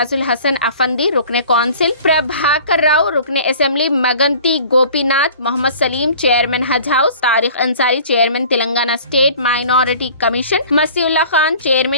الحسن افندی، رکن کونسل پربھاکر راؤ، رکن assembly Maganti Gopi Nath, Mohammed Saleem, chairman Haj house, Tariq Ansari, chairman Telangana state minority commission, Masih Ullah Khan,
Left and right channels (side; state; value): both; inverted; correlation -0.47